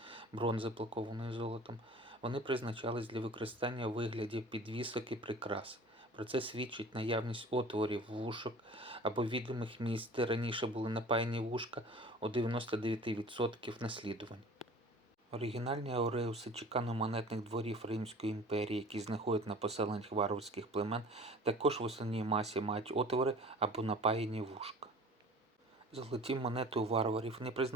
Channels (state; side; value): normal; both; correlation 0.43